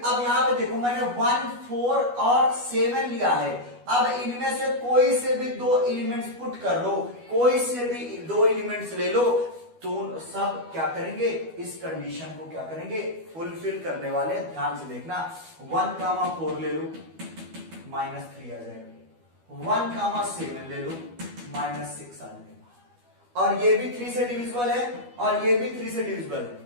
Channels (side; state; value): left; late; 12 ms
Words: यहां पे देखो मैंने 1 4 और 7 लिया है। अब इनमें से कोई से भी 2 एलिमेंट्स पुट कर लो, कोई से भी 2 एलिमेंट्स ले लो, तो सब क्या करेंगे? इस कंडीशन को क्या करेंगे? फुलफिल करने वाले। ध्यान से देखना 1 कामा 4 ले लो -3 आ जाएगा, 1 कामा 7 ले लो -6 आ जाएगा, और ये भी 3 से डिविजिबल है और ये भी 3 से डिविजिबल है।